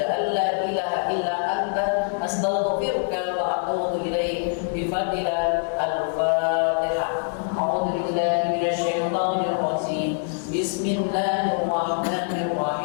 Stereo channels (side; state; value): right; silent; 62 dB below the other